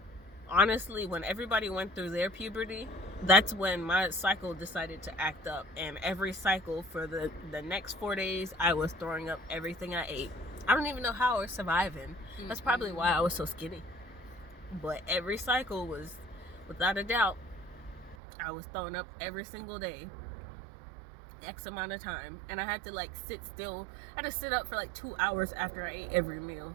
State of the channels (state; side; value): drops out; left; at 18.2 s